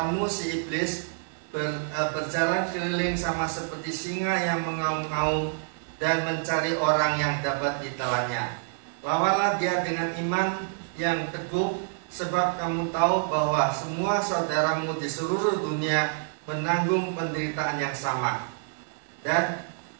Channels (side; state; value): left; silent; 60 dB below the other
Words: si iblis berjalan keliling sama seperti singa yang mengaum-ngaum dan mencari orang yang dapat ditelannya. Lawanlah dia dengan iman yang teguh, sebab kamu tahu bahwa semua saudaramu di seluruh dunia menanggung penderitaan yang sama. Dan